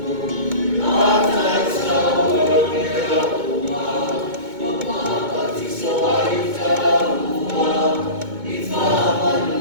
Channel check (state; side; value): late; left; 2.2 ms